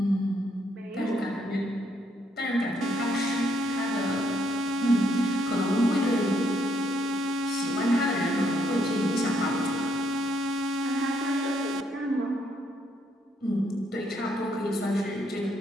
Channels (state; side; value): normal; both; correlation 0.73